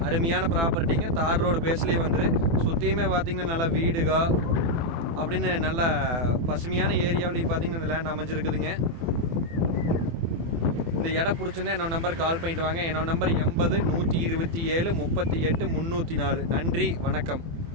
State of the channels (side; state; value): left; late; 24 ms